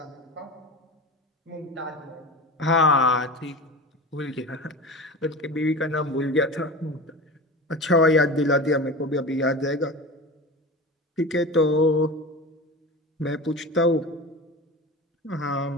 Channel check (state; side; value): normal; both; correlation 0.30